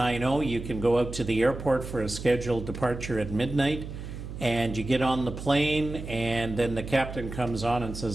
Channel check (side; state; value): right; noise; hum, 9 dB below the sound